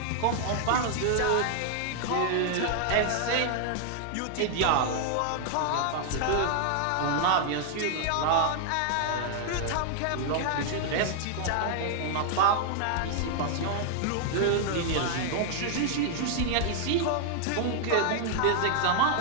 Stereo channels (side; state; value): both; different; correlation 0.00